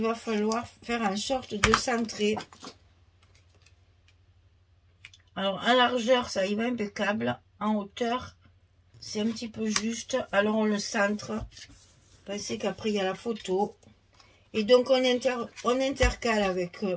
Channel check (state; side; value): identical; both; correlation 1.00